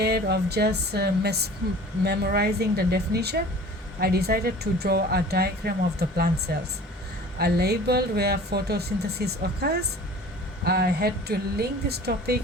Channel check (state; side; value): normal; both; correlation 0.44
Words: of just memorizing the definition, I decided to draw a diagram of the plant cells. I labeled where photosynthesis occurs. I had to link this topic